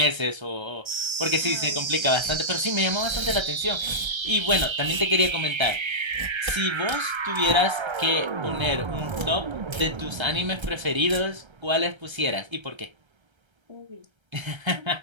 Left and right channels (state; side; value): late; left; 1.3 ms